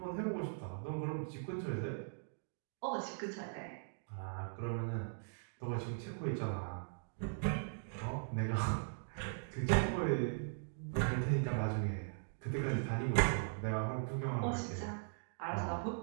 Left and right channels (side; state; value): left; silent; digital silence